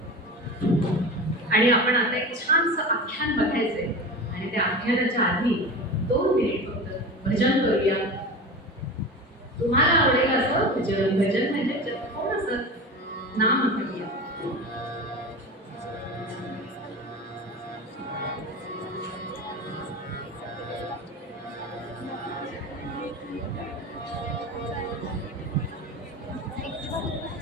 आणि आपण आता एक छानसं आख्यान बघायचंय आणि त्या आख्यानाच्या आधी 2 मिनिट फक्त भजन करूया. तुम्हाला आवडेल असं भजन. भजन म्हणजे थोडंसं नाम करूया.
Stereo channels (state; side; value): normal; both; correlation 0.29